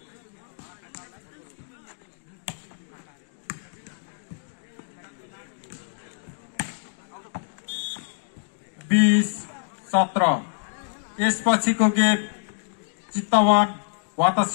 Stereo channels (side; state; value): right; silent; digital silence